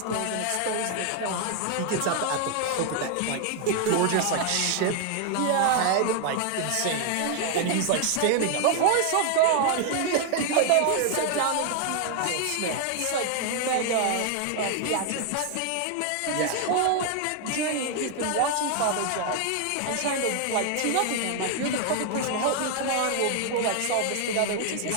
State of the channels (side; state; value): both; different; correlation 0.00